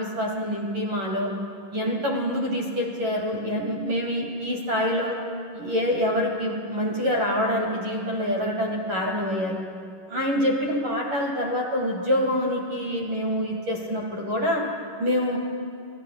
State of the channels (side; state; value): left; late; 11 ms